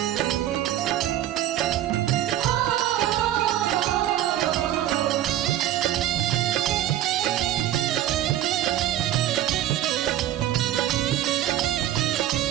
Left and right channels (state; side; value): quieter; left; 12.8 dB